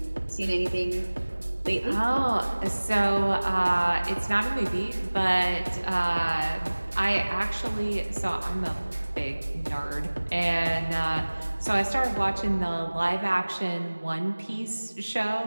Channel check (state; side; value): inverted; both; correlation -1.00